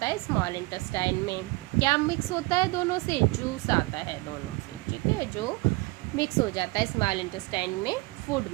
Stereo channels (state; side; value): quieter; left; 24.2 dB